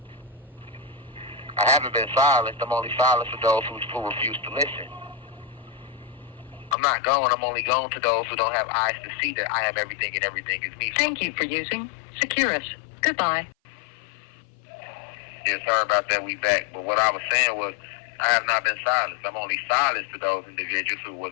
I haven't been silenced. I'm only silenced for those who refuse to listen. I'm not going. I'm only going to those who don't have eyes to see that I am everything and everything is me. Thank you for using Securus. Goodbye. Yeah, sorry about that. We back. But what I was saying was, I have not been silenced. I'm only silenced to those individuals who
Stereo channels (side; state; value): right; drops out; at 6.8 s